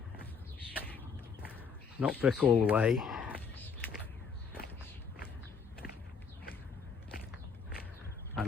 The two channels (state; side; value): quieter; right; 5.7 dB